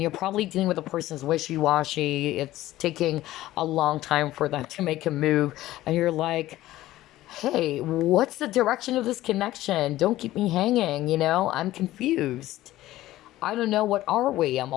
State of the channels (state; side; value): quieter; right; 15.5 dB